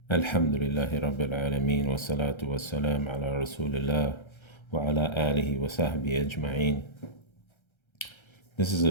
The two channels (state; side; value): late; right; 1.3 ms